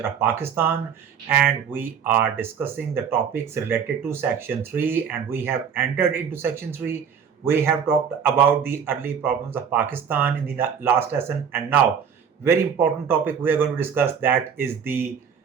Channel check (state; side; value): quieter; left; 7.2 dB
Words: of Pakistan, and we are discussing the topics related to section 3, and we have entered into section 3. We have talked about the early problems of Pakistan in the last lesson, and now very important topic we are going to discuss, that is the